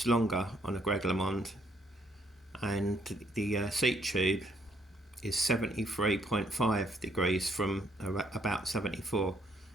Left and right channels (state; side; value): normal; both; correlation 0.69